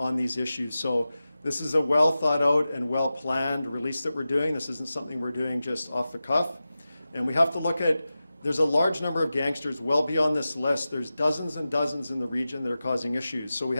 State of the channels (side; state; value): both; inverted; correlation -0.94